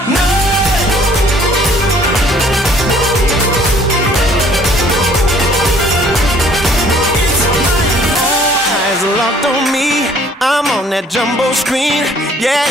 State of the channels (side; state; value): both; normal; correlation 0.57